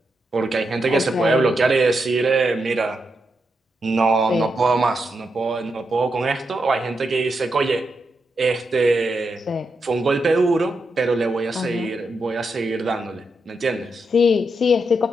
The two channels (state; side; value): normal; both; correlation 0.84